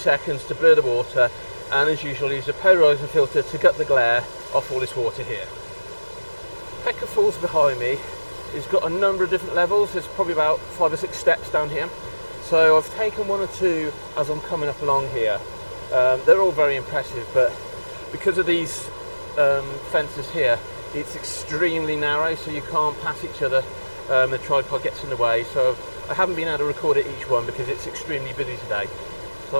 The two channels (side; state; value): both; inverted; correlation -1.00